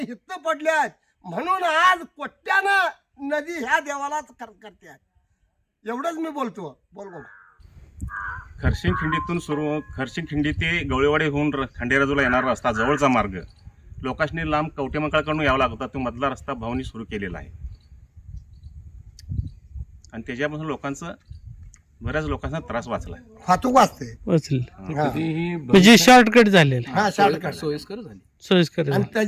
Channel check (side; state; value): both; identical; correlation 1.00